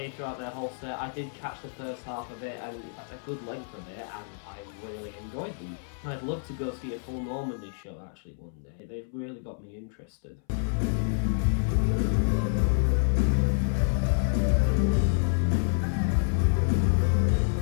throughout their whole set, I did catch the first half of it, and in fact a good length of it, and I really enjoyed them. I'd love to go see a full Normandie show actually one day. They've really got me interested.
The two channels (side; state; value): right; silent; 59 dB below the other